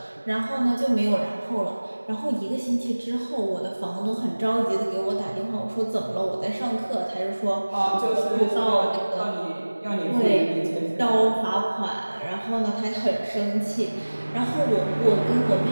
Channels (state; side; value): inverted; both; correlation -1.00